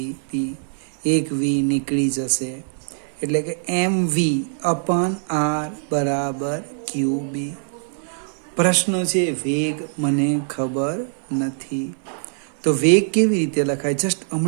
એક V નીકળી જશે એટલે કે mv/r બરાબર QB. પ્રશ્ન છે વેગ મને ખબર નથી. તો વેગ કેવી રીતે લખાય? જસ્ટ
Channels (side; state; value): left; silent; 64 dB below the other